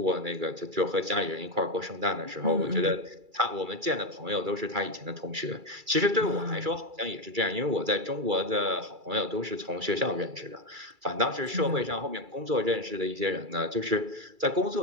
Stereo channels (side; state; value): left; late; 2.3 ms